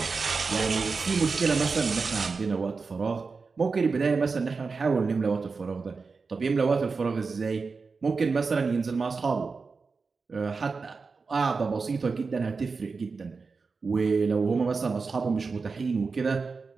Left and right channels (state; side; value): quieter; left; 4.6 dB